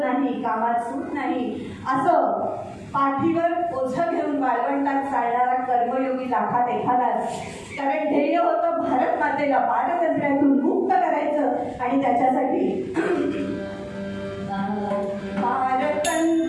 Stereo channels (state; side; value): identical; both; correlation 1.00